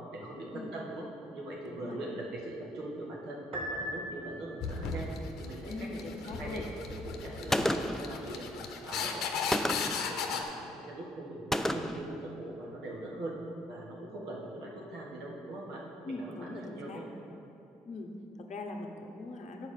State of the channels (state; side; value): normal; both; correlation 0.67